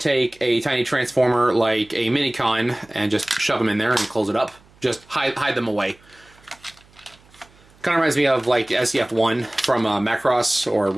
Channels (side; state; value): right; noise; hum, 29 dB below the sound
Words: a tiny transformer like a Minicon and just shove them in there and close it up. Just hide them away. Kind of reminds me of like SDF-1 from Macross or